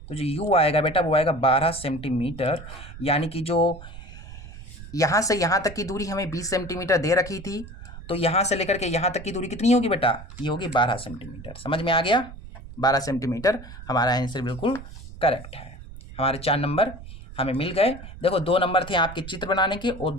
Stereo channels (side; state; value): right; noise; rumble, 14 dB below the sound